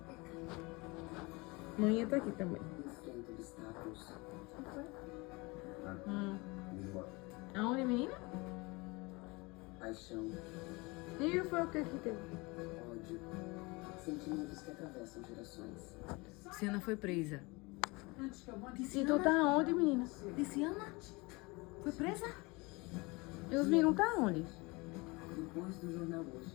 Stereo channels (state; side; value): quieter; right; 25.6 dB